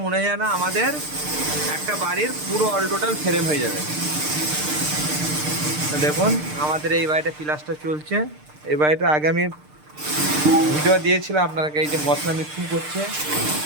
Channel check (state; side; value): late; left; 6.6 ms